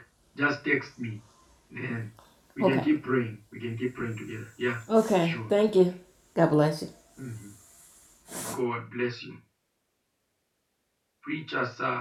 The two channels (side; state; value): both; identical; correlation 1.00